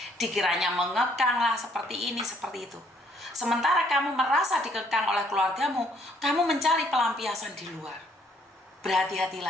Dikiranya mengekang lah, seperti ini, seperti itu. Sementara kamu merasa dikekang oleh keluargamu, kamu mencari pelampiasan di luar.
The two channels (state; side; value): normal; both; correlation 0.65